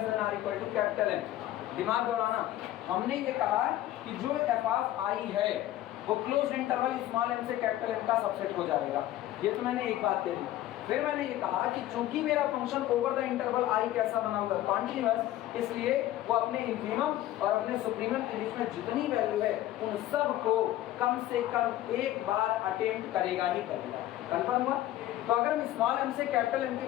than or equal to capital M, दिमाग दौड़ाना, हमने ये कहा कि जो f of I है वो क्लोज्ड इंटरवल स्मॉल m से कैपिटल M का सबसेट हो जाएगा। ये तो मैंने एक बात कह दी। फिर मैंने ये कहा कि चूंकि मेरा function over the interval I कैसा बना हुआ है, कॉन्टिन्यूअस, इसलिए वो अपने इंफीमम और अपने सुप्रीमम के बीच में जितनी वैल्यू है उन सब को कम से कम एक बार अटेम्प्ट करेगा ही करेगा। कंफर्म हुआ? तो अगर हम स्मॉल m से कैपिटल M के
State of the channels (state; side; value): quieter; right; 14.2 dB